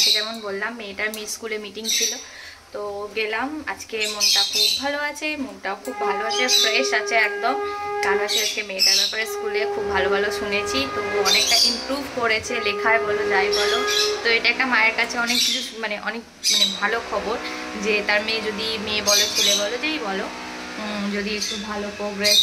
যেমন বললাম মেয়েটার স্কুলে মিটিং ছিল, তো গেলাম। আজকে মনটা খুব ভালো আছে, মনটাও খুব ভালো আছে, ফ্রেশ আছে একদম। কারণ হচ্ছে আজকে মেয়েটার ব্যাপারে স্কুলে খুব ভালো ভালো শুনেছি, তো অনেকটা ইমপ্রুভ করেছে লেখায় বলো যাই বলো। তো এটা একটা মায়ের কাছে অনেক কিছু অনেক ভালো খবর যে তার মেয়ে, যদি মেয়ে বলো ছেলে বলো যেই বলো, যদি একটু ভালো প্রোগ্রেস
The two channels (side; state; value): both; identical; correlation 1.00